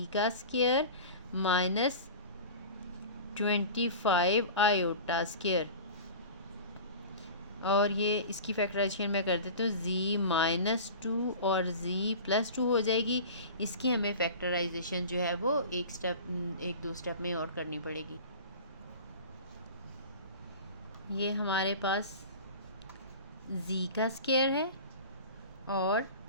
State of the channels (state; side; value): inverted; both; correlation -0.36